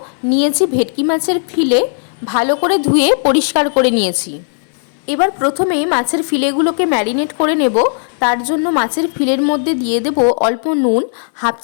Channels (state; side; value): silent; right; digital silence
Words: নিয়েছি ভেটকি মাছের ফিলে, ভালো করে ধুয়ে পরিষ্কার করে নিয়েছি। এবার প্রথমে মাছের ফিলেগুলোকে ম্যারিনেট করে নেব। তার জন্য মাছের ফিলের মধ্যে দিয়ে দেব অল্প নুন, হাফ